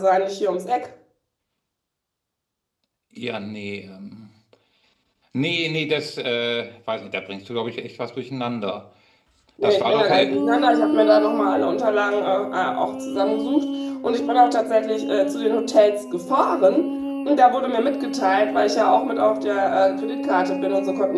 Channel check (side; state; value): both; identical; correlation 1.00